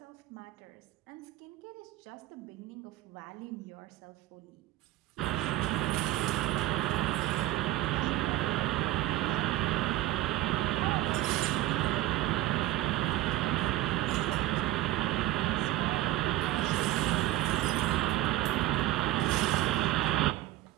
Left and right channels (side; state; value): left; quieter; 15.9 dB